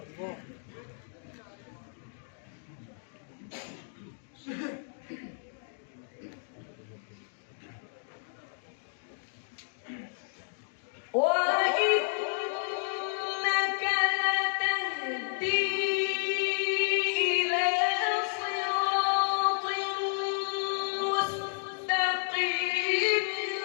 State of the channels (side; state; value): right; silent; digital silence